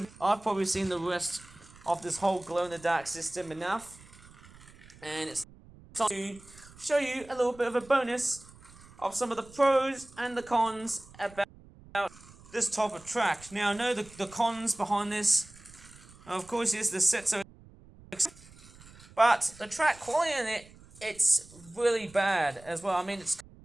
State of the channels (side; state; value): right; noise; rumble, 22 dB below the sound